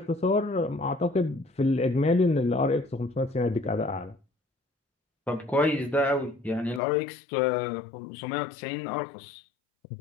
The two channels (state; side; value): drops out; right; at 6.8 s